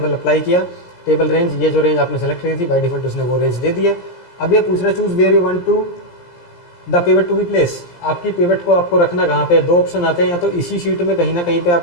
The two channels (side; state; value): right; late; 17 ms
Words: अप्लाई किया, टेबल रेंज, ये जो रेंज आपने सेलेक्ट की थी बाय डिफॉल्ट उसने वो रेंज दे दिया। अब ये पूछ रहा है choose where you want to the pivot to be place, आपकी पिवट को आपको रखना कहाँ पे। 2 ऑप्शन आते हैं, या तो इसी शीट में कहीं ना कहीं पे